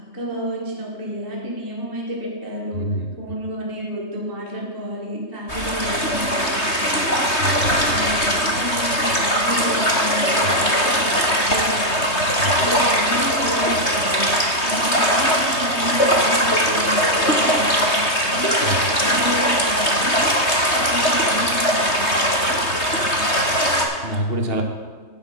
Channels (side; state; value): right; late; 3.2 ms